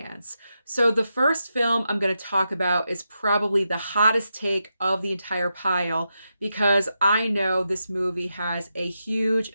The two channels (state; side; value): inverted; both; correlation -0.87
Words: So the first film I'm going to talk about is probably the hottest take of the entire pile because I know this movie has a huge